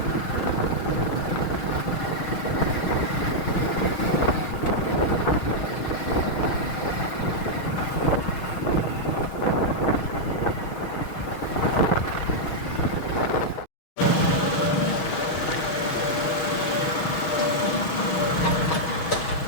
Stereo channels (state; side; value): late; right; 6.3 ms